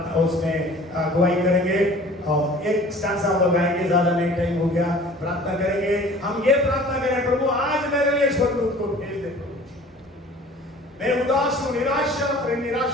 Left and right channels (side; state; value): both; normal; correlation 0.47